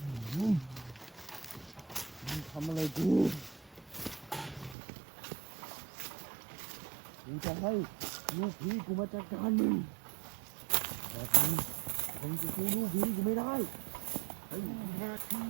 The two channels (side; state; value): left; drops out; at 4.8 s